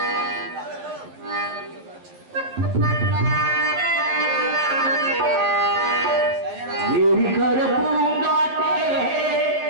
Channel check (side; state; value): left; late; 11 ms